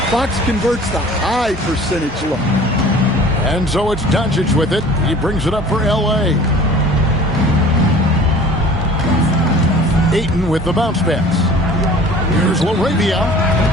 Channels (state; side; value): normal; both; correlation 0.46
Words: Fox converts the high percentage look. And so it's Doncic with it. He brings it up for L.A. Ayton with the bounce pass. Here's LaRavia.